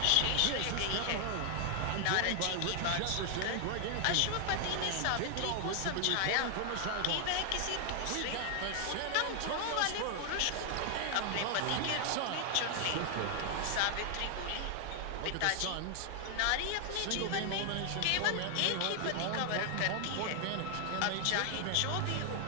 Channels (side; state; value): both; different; correlation 0.00